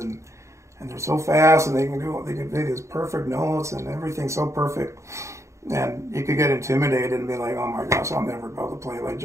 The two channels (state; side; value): late; left; 0.14 ms